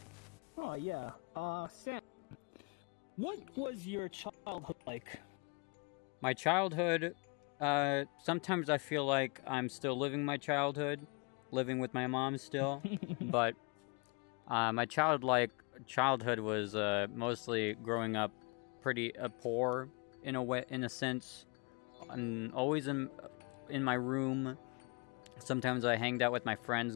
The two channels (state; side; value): quieter; right; 32.6 dB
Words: Oh, yeah. Sam, what was your childhood like? My childhood, sometimes I feel like I'm still living my childhood, living with my mom still, but my childhood was mostly growing up pretty poor in a sense. I'm always in my room. Sometimes I hanged out with my friends,